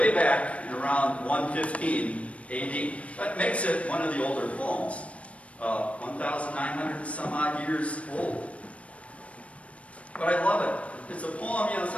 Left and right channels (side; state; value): right; late; 0.064 ms